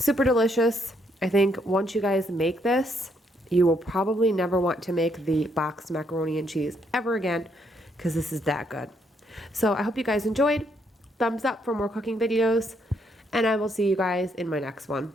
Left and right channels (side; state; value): both; normal; correlation 0.73